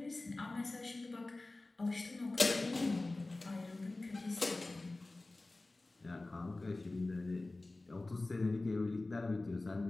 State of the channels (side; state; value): right; quieter; 3.0 dB